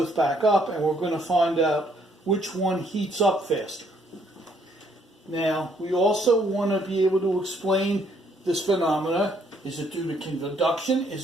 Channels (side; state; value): both; normal; correlation 0.68